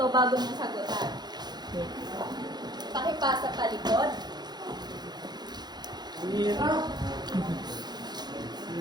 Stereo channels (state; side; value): late; left; 0.20 ms